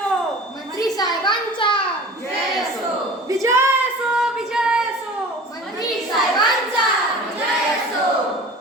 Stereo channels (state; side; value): normal; both; correlation 0.40